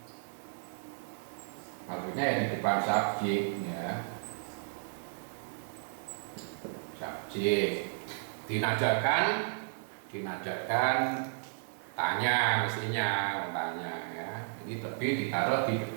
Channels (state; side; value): silent; left; digital silence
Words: maksudnya ya di depan subjek, ya. Subjek dinajakan tanya, mestinya tanya, ya. Jadi tapi ditaruh di